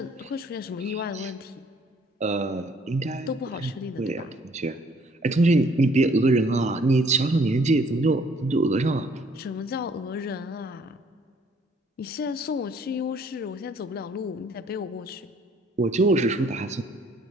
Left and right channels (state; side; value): normal; both; correlation 0.61